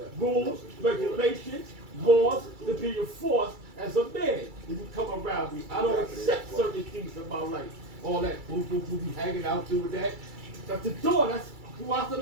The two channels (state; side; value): late; left; 2.3 ms